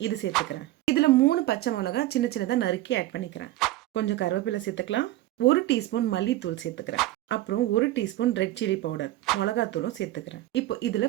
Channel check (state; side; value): quieter; left; 15.7 dB